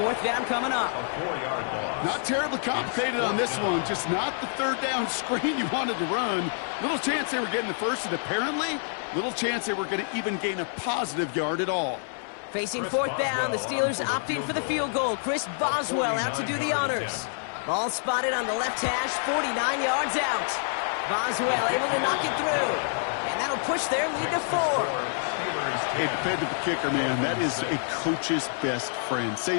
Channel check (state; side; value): silent; right; 60 dB below the other